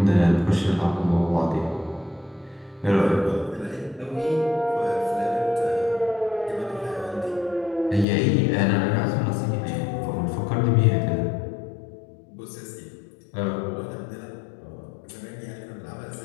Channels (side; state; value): right; drops out; at 8.1 s